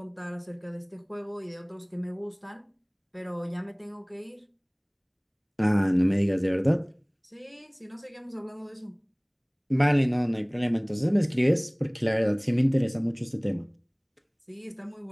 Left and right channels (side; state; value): both; identical; correlation 1.00